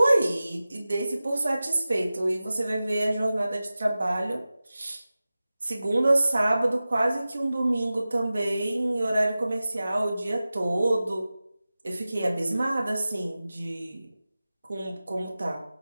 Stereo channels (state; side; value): inverted; both; correlation -0.96